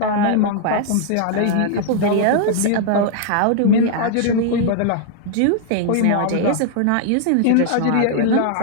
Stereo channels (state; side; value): different; both; correlation -0.01